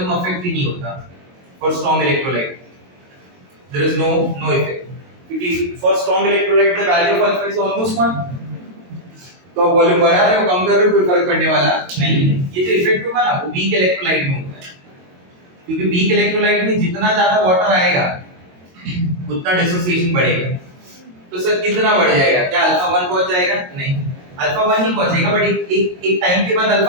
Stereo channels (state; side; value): late; left; 22 ms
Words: affect ही नहीं होता। For strong electrolyte, there is no effect. क्योंकि for strong electrolyte the value of alpha is almost 1, तो आप वॉल्यूम बढ़ा रहे हो कम कर रहे हो कोई फर्क पड़ने वाला नहीं। ये जो इफेक्ट होगा ना वो वीक इलेक्ट्रोलाइट में होता है, क्योंकि वीक इलेक्ट्रोलाइट में जितना ज्यादा वाटर आएगा उतना डिसोसिएशन बढ़ेगा। तो सर कितना बढ़ जाएगा? क्या अल्फा 1 पहुंच जाएगा? नहीं, अल्फा 1 नहीं पहुंचेगा, बट एक टाइम के बाद